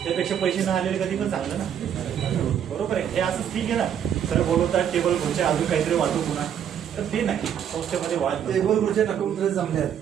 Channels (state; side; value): quieter; left; 9.0 dB